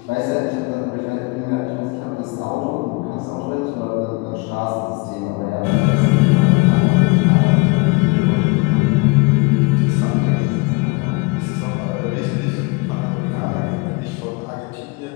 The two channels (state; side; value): quieter; right; 27.6 dB